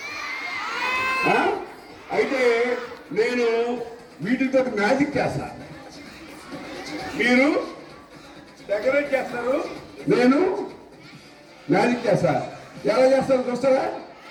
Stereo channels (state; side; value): identical; both; correlation 1.00